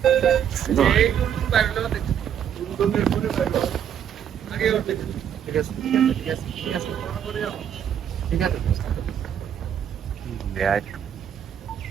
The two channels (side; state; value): left; quieter; 9.1 dB